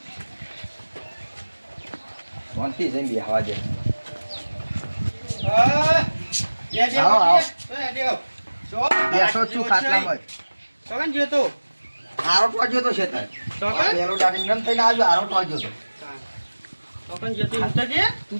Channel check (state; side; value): inverted; both; correlation -1.00